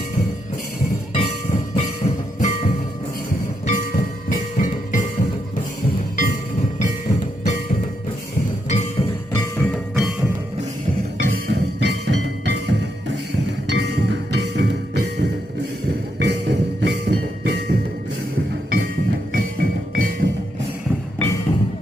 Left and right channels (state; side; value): normal; both; correlation 0.81